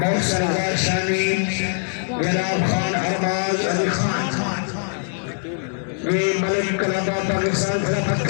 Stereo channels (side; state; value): right; silent; digital silence